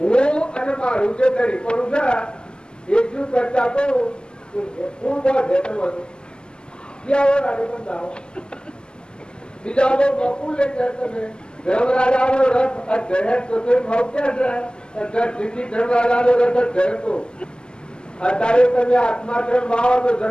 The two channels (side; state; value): right; late; 0.047 ms